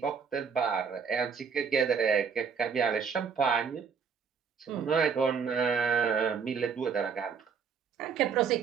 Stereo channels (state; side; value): quieter; left; 6.2 dB